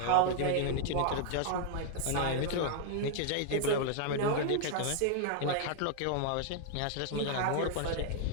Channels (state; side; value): different; both; correlation 0.00